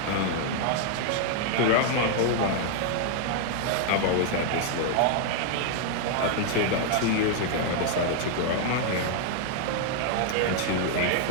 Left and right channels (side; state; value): both; different; correlation 0.00